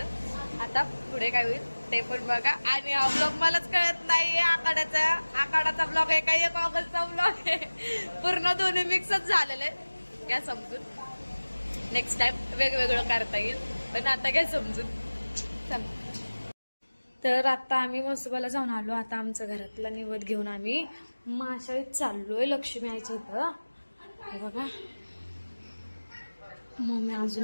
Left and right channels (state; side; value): inverted; both; correlation -1.00